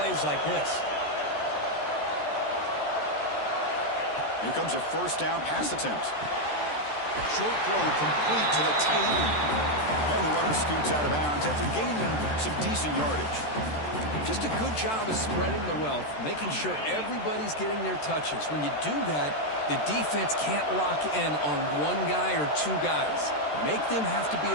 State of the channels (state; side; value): late; right; 13 ms